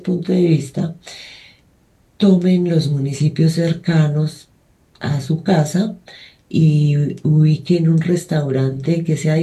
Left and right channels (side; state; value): both; identical; correlation 1.00